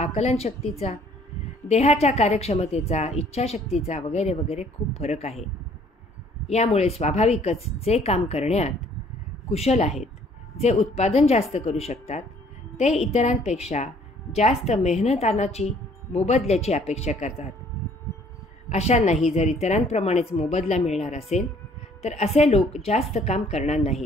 देहाच्या कार्यक्षमतेचा, इच्छाशक्तीचा वगैरे वगैरे खूप फरक आहे. यामुळे स्वाभाविकच जे काम करण्यात कुशल आहेत, जे उत्पादन जास्त करू शकतात, ते इतरांपेक्षा जास्त मेहनतानाची मोबदल्याची अपेक्षा करतात. अशांनाही जर इतरांप्रमाणेच मोबदला मिळणार असेल तर असे लोक जास्त काम करणार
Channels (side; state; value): both; normal; correlation 0.59